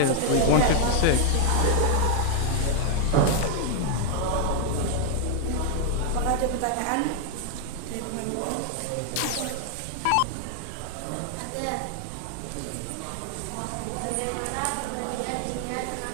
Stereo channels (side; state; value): both; different; correlation 0.00